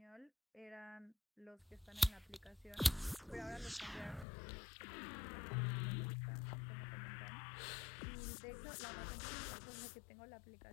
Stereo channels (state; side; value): drops out; right; at 4.2 s